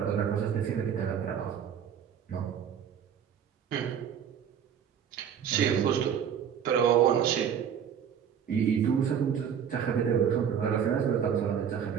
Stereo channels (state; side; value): quieter; left; 8.3 dB